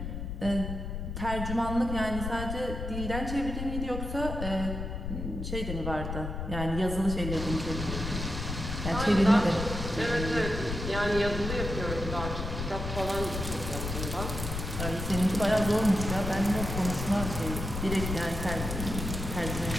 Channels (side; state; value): left; noise; rumble, 5 dB below the sound